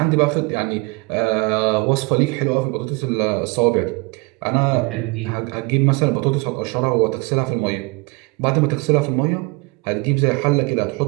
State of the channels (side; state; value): left; quieter; 27.1 dB